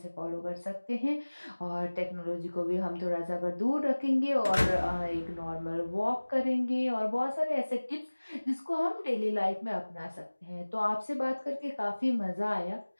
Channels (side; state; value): both; inverted; correlation -1.00